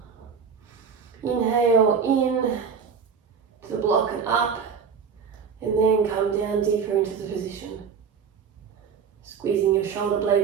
Inhale in to the block and up, and then come down deeper into the position. Squeezing your shoulder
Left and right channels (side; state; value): left; quieter; 6.3 dB